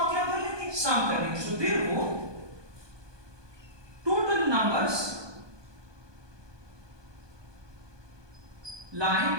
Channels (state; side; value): late; left; 1.2 ms